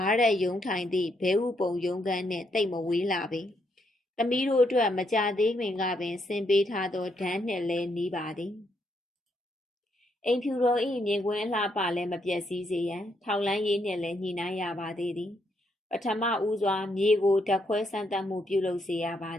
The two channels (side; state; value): both; normal; correlation 0.76